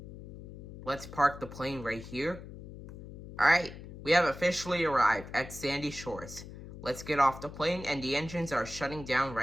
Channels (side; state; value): left; noise; hum, 13 dB below the sound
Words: Let's park the plane right here. Alright, we have officially arrived at Sandy Shores. Let's get off the plane, and the engines are shutting down